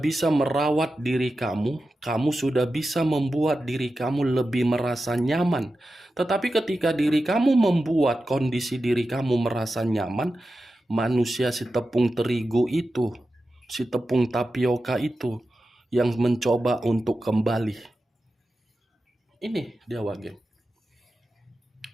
merawat diri kamu, kamu sudah bisa membuat diri kamu lebih merasa nyaman. Tetapi ketika diri kamu membuat kondisi diri kamu merasa nyaman, manusia si tepung terigu itu, si tepung tapioka itu yang mencoba untuk kembali. Ini dia wage.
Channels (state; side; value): normal; both; correlation 0.92